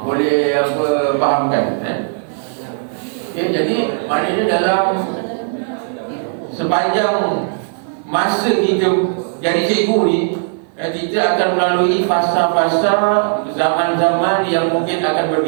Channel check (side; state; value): left; silent; 59 dB below the other